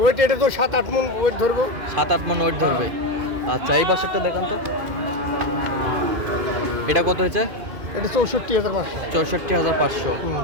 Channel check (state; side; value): late; left; 2.5 ms